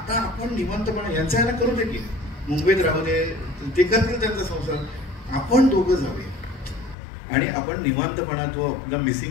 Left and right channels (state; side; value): drops out; right; at 7.0 s